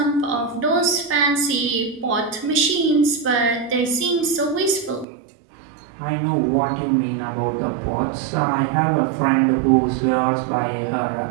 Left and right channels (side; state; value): left; drops out; at 5.1 s